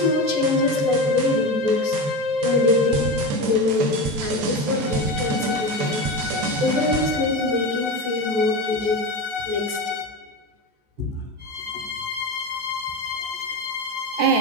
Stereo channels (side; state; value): left; late; 14 ms